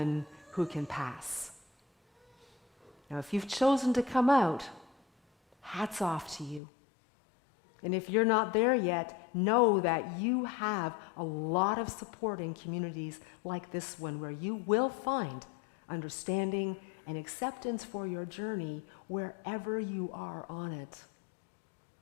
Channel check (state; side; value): drops out; right; at 6.6 s